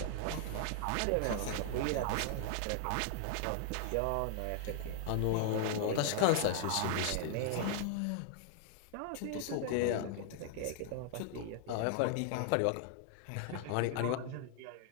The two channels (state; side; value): different; both; correlation 0.00